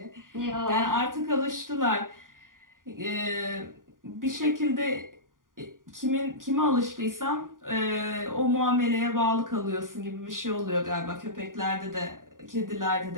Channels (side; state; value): left; late; 0.89 ms